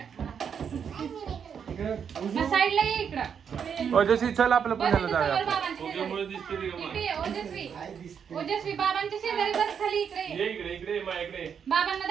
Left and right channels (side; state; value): left; quieter; 7.3 dB